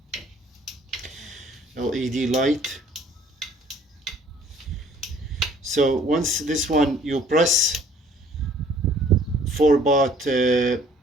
LED light. So once this one you press for about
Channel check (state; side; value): normal; both; correlation 0.57